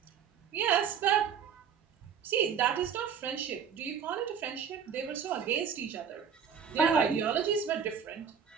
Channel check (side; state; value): left; quieter; 7.4 dB